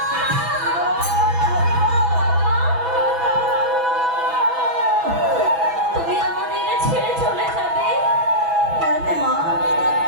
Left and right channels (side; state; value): left; late; 6.1 ms